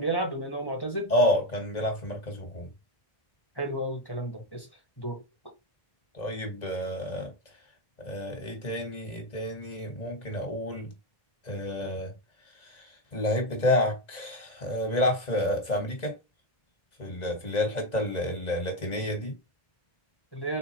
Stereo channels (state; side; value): late; right; 2.0 ms